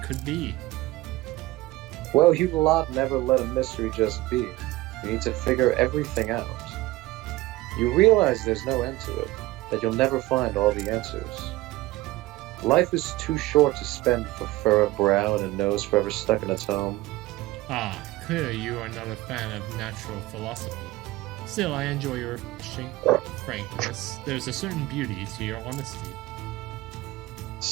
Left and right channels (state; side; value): quieter; left; 18.5 dB